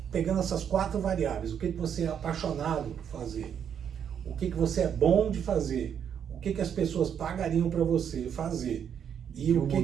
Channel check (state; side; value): quieter; left; 8.3 dB